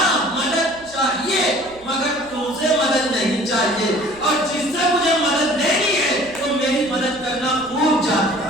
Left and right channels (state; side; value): noise; right; hum, 24 dB below the sound